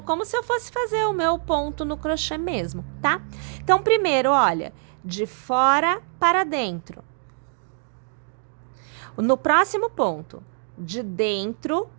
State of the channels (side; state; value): left; silent; digital silence